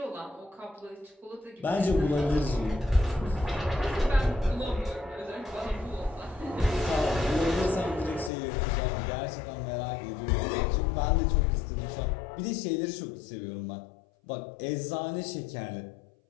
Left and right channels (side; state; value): right; drops out; at 8.3 s